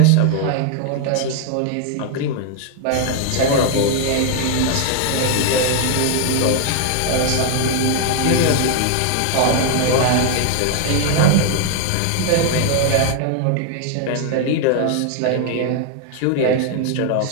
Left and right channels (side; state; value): both; different; correlation 0.00